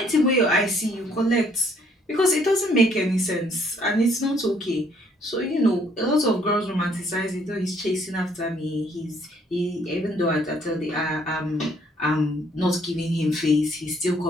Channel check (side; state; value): both; normal; correlation 0.64